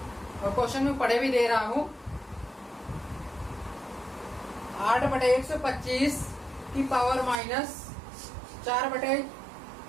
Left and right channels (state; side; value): drops out; left; at 7.4 s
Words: और क्वेश्चन में पढ़े भी दे रहा हूं। 8/125 की पावर माइनस